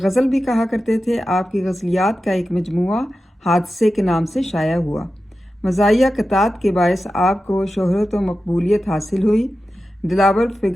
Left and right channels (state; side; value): normal; both; correlation 0.93